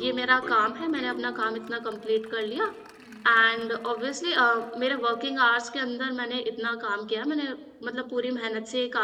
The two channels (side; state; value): both; identical; correlation 1.00